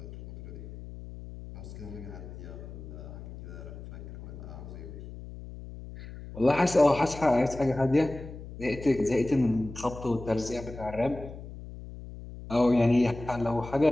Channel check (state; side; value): noise; left; hum, 13 dB below the sound